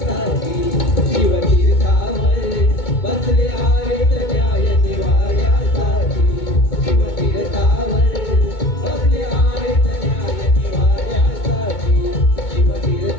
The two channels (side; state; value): right; late; 2.2 ms